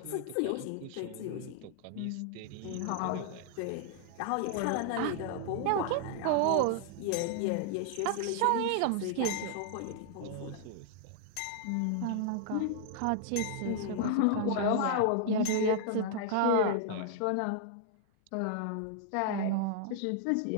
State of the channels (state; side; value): different; both; correlation 0.00